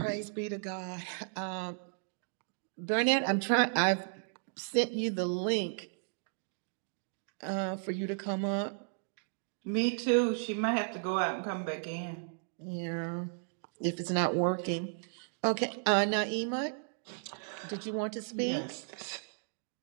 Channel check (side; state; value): left; silent; digital silence